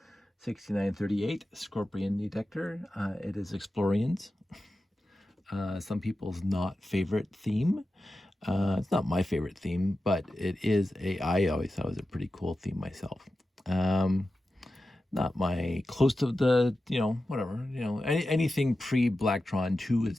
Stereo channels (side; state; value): both; normal; correlation 0.93